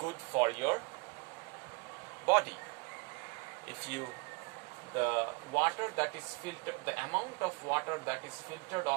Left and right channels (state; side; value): quieter; left; 30.1 dB